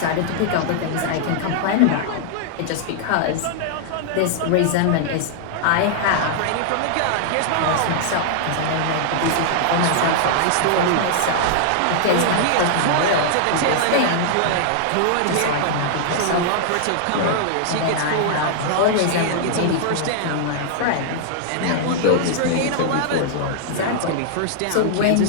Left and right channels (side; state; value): both; different; correlation -0.01